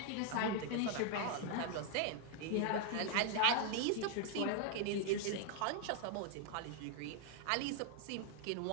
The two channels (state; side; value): different; both; correlation 0.00